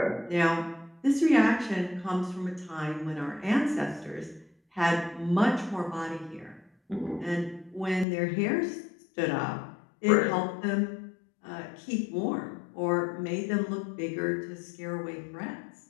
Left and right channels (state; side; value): drops out; right; at 8.1 s